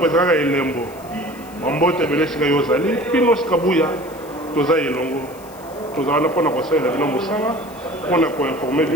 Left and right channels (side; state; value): left; noise; hiss, 23 dB below the sound